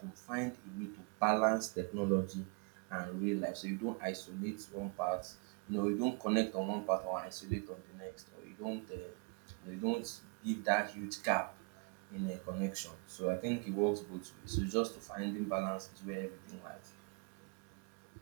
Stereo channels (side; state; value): left; quieter; 34.6 dB